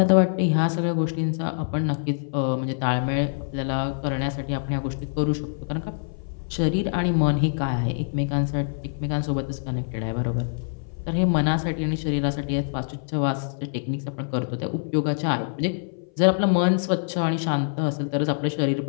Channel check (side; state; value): right; silent; 58 dB below the other